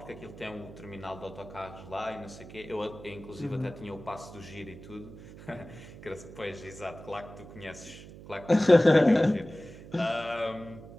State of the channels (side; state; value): right; noise; hum, 16 dB below the sound